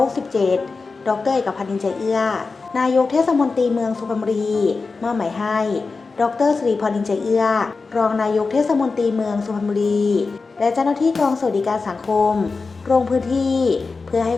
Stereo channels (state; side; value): quieter; right; 4.2 dB